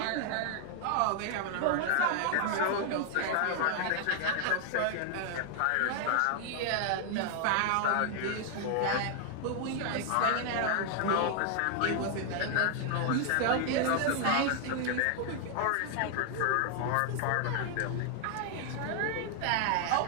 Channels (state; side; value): different; both; correlation 0.00